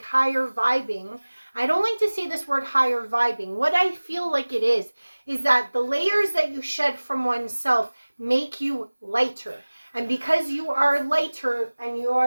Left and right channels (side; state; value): both; inverted; correlation -1.00